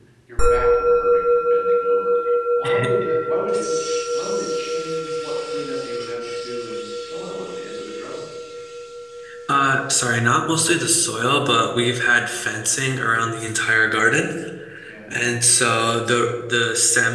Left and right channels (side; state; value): both; identical; correlation 1.00